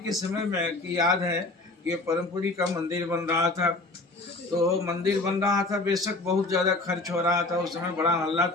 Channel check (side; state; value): right; quieter; 3.0 dB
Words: समय में कि याद है कि परमपुरी का मंदिर बन रहा था, तो मंदिर बन रहा था, बेशक बहुत ज़्यादा खर्च हो रहा था। उस समय बड़ा हल्ला